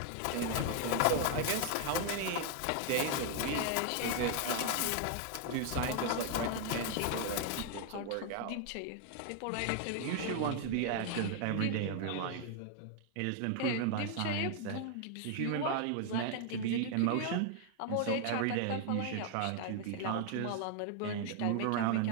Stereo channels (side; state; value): both; different; correlation 0.00